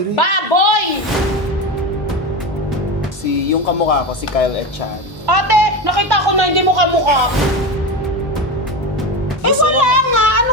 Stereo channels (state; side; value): normal; both; correlation 0.20